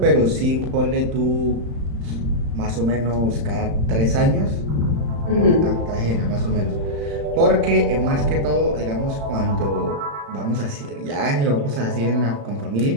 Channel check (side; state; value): left; late; 35 ms